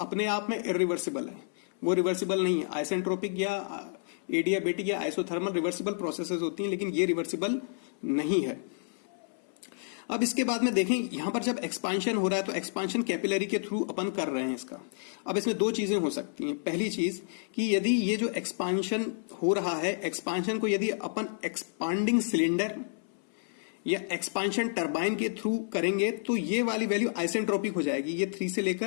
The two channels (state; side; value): silent; right; 58 dB below the other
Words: आप में इरिवर्सिबल है, वो रिवर्सिबल नहीं है। आइसेंट्रोपिक या एडियाबेटिक या आइसोथर्मल रिवर्सिबल प्रोसेसेस होती हैं, लेकिन ये रिवर्सिबल नहीं है। अब इसके बाद में देखें यहां पर जब एक्सपांशन हो रहा है तो एक्सपांशन कैपिलरी के थ्रू अपन कर रहे हैं इसका। अब इसमें 2 चीजें हो सकती हैं। पहली चीज कि यदि ये जो एक्सपांशन हो रहा है, एक्सपांशन को यदि अपन एक्सपांडिंग सिलेंडर या एक्सपांशन टरबाइन के थ्रू करेंगे तो ये वाली वैल्यू आइसेंट्रोपिक हो जाएगी। ये 3 से